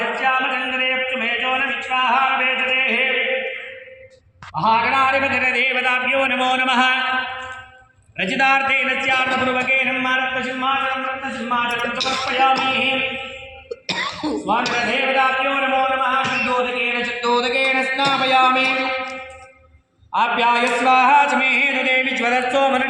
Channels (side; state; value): both; identical; correlation 1.00